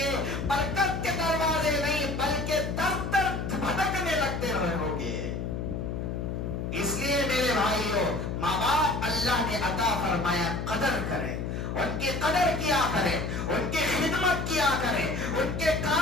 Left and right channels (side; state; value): left; noise; hum, 3 dB below the sound